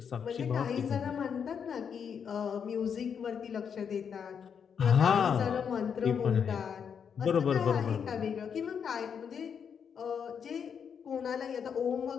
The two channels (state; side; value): quieter; right; 7.2 dB